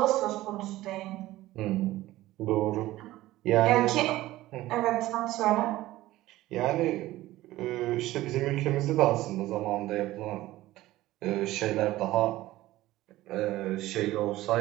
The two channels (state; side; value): quieter; left; 16.5 dB